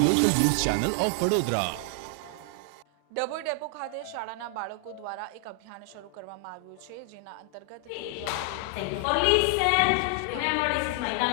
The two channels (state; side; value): different; both; correlation 0.00